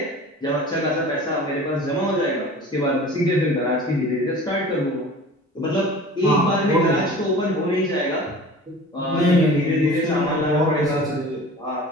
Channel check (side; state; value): both; normal; correlation 0.41